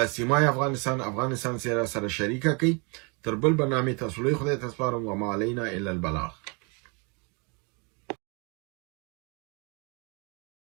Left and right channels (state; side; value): quieter; left; 32.4 dB